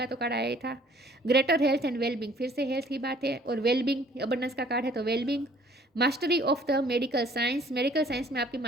तो कार्ड आया ही था। ग्रेटर हेल्थ एंड वेलबींग, फिर से हेल्थ की बात है, और वेलबींग अबंडेंस का कार्ड है तो wellbeing. Mastery of the medical science, medical science में आपकी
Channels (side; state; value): both; normal; correlation 0.57